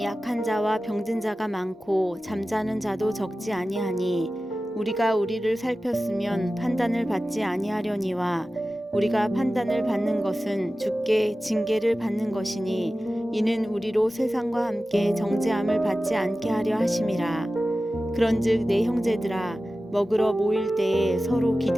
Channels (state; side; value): normal; both; correlation 0.95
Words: 약한 자와 병든 자가 많고 잠자는 자도 적지 아니하니 우리가 우리를 살폈으면 판단을 받지 아니하려니와 우리가 판단을 받는 것은 주께 징계를 받는 것이니 이는 우리로 세상과 함께 정죄함을 받지 않게 하려 하심이라. 그런즉 내 형제들아 먹으러 모일 때에 서로